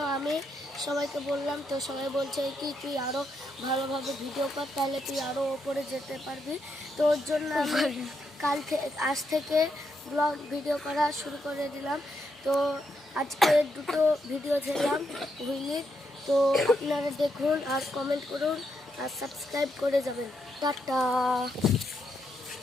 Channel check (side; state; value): both; normal; correlation 0.80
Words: আমি সবাইকে বললাম, তো সবাই বলছে কি তুই আরও ভালোভাবে ভিডিও কর, তাহলে তুই আরও ওপরে যেতে পারবি। তো ওর জন্য আমি আজ থেকে ব্লগ ভিডিও করা শুরু করে দিলাম। তো আজকে দুটো ভিডিও ছেড়লাম হুইলির। তো আপনারা দেখুন আর কমেন্ট করুন আর সাবস্ক্রাইব করে যাবেন। টাটা।